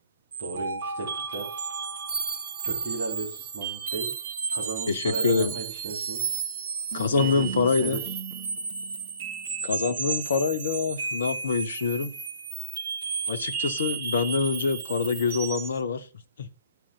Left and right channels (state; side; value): inverted; both; correlation -0.60